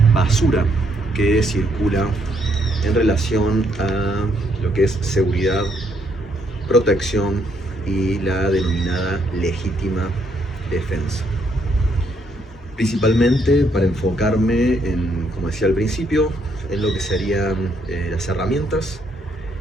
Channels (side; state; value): both; normal; correlation 0.72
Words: basura que circula en relación a lo que es seguridad, protección y la denominada legítima defensa. Principalmente para enfocarme en, como decía al principio, en lo que serían las herramientas